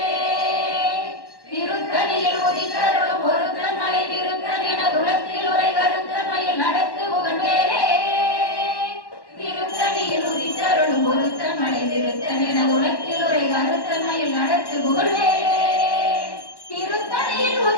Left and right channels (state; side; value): late; right; 1.1 ms